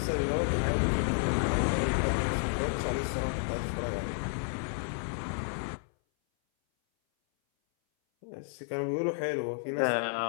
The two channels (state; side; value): silent; right; 57 dB below the other